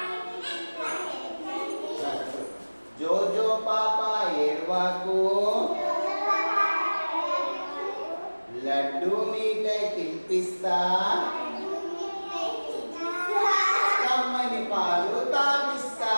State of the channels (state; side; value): inverted; both; correlation -1.00